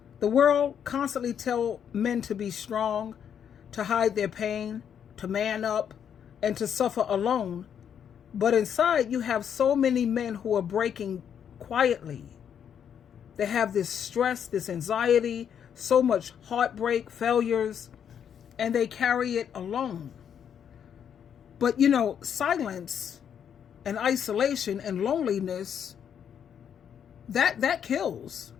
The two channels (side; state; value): right; quieter; 8.4 dB